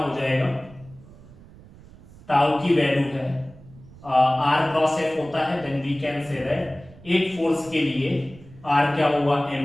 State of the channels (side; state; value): right; noise; rumble, 21 dB below the sound